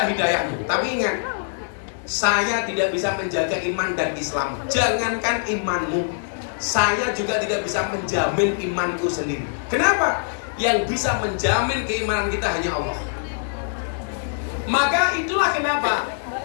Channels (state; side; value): silent; right; digital silence